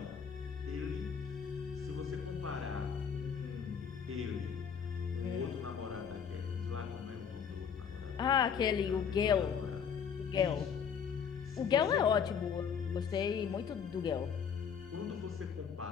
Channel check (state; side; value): quieter; right; 7.1 dB